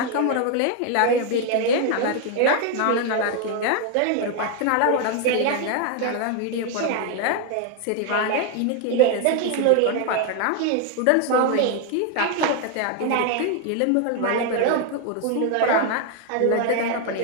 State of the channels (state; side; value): different; both; correlation 0.00